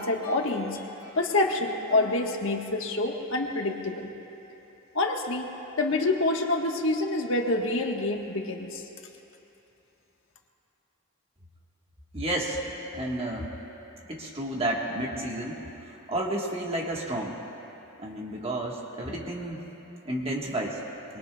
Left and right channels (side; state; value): both; normal; correlation 0.04